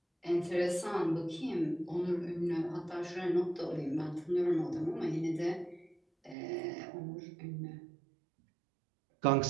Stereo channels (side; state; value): left; drops out; at 6.4 s